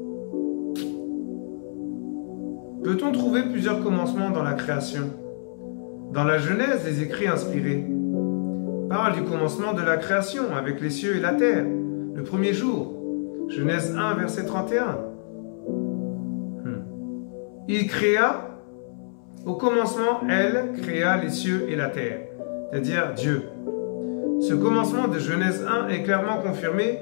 Peut-on trouver plusieurs commencements dans la création? Dans la Genèse, les écrits inspirés parlent du commencement de la création avec les cieux et la terre, le premier jour. Genèse 1, verset 31. Il créa, au commencement, elle créa les cieux et la terre, c'est-à-dire Dieu. Ce commencement de Genèse 1 est clairement confirmé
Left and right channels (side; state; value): right; silent; 61 dB below the other